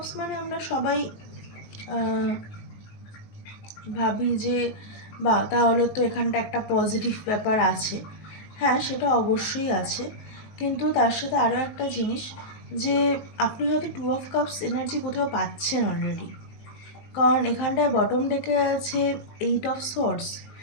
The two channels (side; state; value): right; late; 19 ms